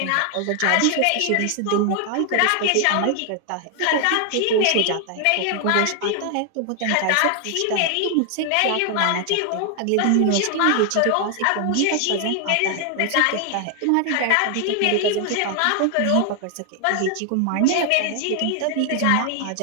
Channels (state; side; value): different; both; correlation 0.00